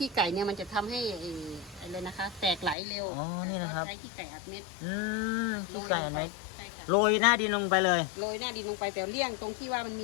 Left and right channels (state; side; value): drops out; right; at 2.8 s